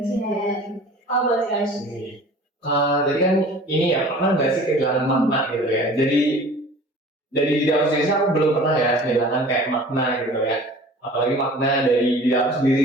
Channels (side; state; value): both; normal; correlation 0.44